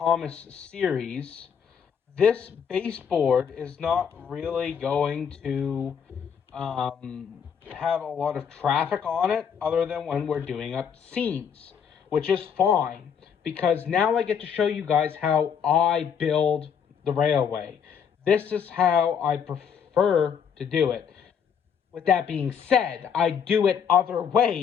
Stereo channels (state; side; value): quieter; right; 7.4 dB